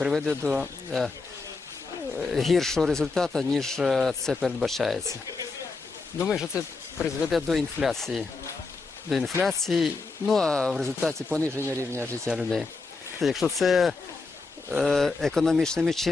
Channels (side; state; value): right; quieter; 4.0 dB